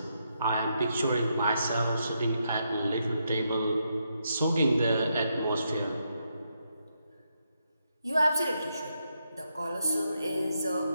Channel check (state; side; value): inverted; both; correlation -0.80